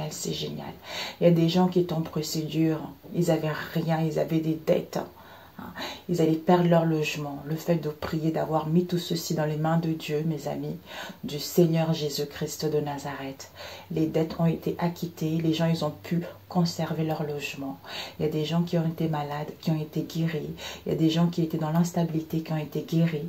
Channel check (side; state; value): both; identical; correlation 1.00